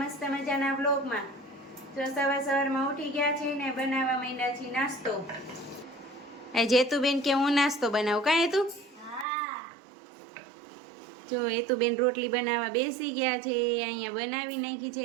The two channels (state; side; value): drops out; left; at 9.2 s